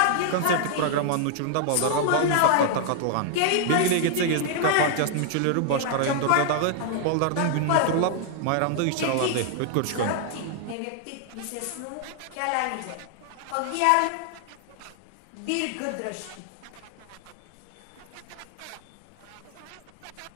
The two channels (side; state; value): both; different; correlation 0.00